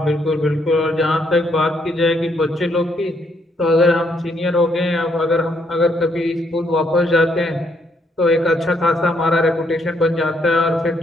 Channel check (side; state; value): both; normal; correlation 0.73